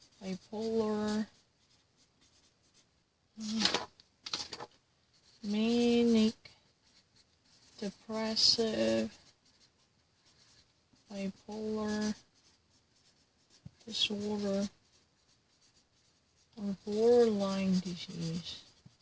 Bipolar. Manic. Depressive. Bipolar disorder. Or borderline disease.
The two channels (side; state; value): both; identical; correlation 1.00